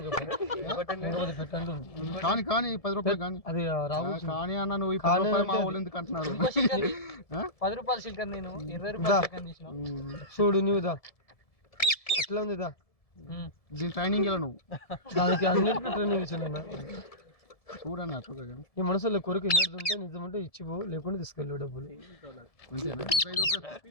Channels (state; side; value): late; right; 1.7 ms